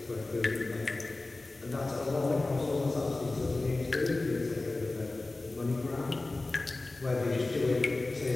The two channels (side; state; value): right; quieter; 3.1 dB